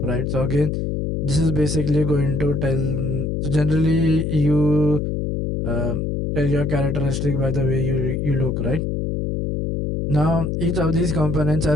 right? So again, this is basically going to tell. So generally, you tell your characteristic by the way you look, right? Now, each of these components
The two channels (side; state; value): left; noise; hum, 1 dB below the sound